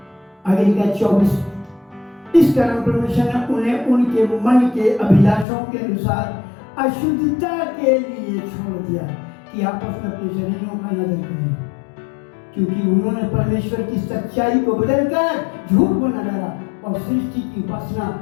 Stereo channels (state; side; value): drops out; right; at 5.5 s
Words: आगे लिखा 24, इस कारण परमेश्वर ने उन्हें उनके मन के अभिलाषों के अनुसार अशुद्धता के लिए छोड़ दिया कि आपस में अपने शरीरों का नदर करें, क्योंकि उन्होंने परमेश्वर की सच्चाई को बदलकर झूठ बना डाला और सृष्टि की उपासना